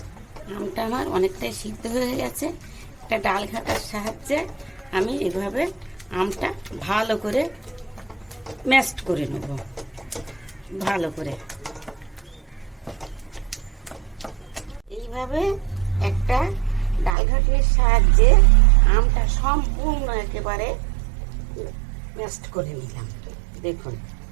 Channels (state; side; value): drops out; left; at 17.2 s